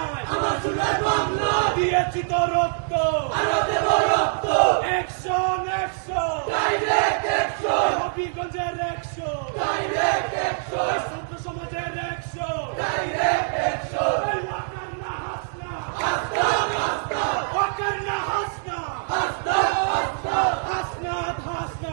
আমার সোনার বাংলা দিয়েছি তো রক্ত, অ্যাকশন অ্যাকশন হবিগঞ্জের অ্যাকশন, ছাত্র সমাজের অ্যাকশন,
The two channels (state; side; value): silent; left; digital silence